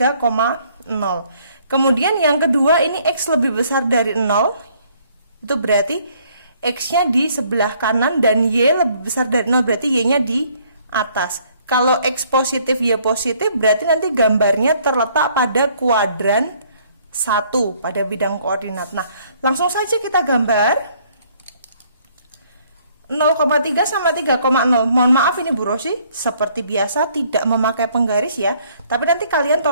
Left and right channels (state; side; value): inverted; both; correlation -0.64